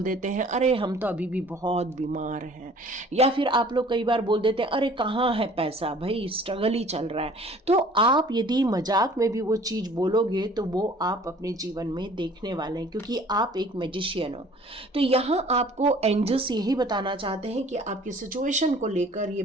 देते हैं अरे हम तो अभी भी बहुत बीमार हैं, या फिर आप लोग कई बार बोल देते हैं अरे कहाँ है पैसा, भाई स्ट्रगल ही चल रहा है। तो आप यदि मजाक में भी वो चीज़ बोलोगे तो वो आप अपने जीवन में देखने वाले हैं, क्योंकि आप एक मैजिशियन हो। तो यहाँ आपको एंजल्स यही बताना चाहते हैं कि आपकी सिचुएशन को लेकर ये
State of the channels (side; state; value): both; normal; correlation 0.51